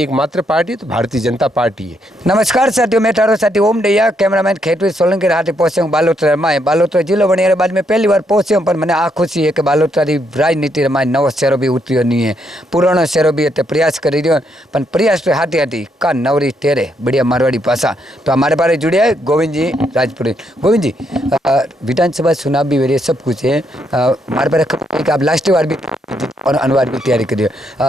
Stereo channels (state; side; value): normal; both; correlation 0.76